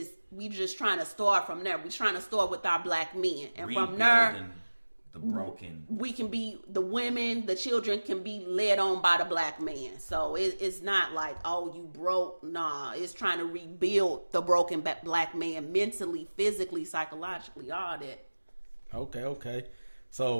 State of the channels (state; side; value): inverted; both; correlation -1.00